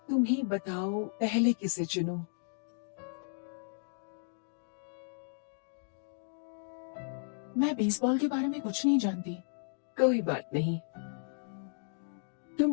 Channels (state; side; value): silent; right; digital silence